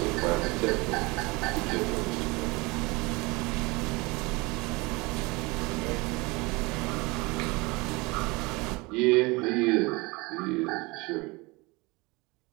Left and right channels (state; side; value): quieter; left; 25.0 dB